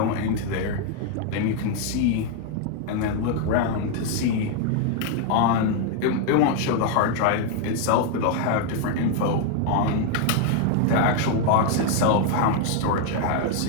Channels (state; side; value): different; both; correlation 0.01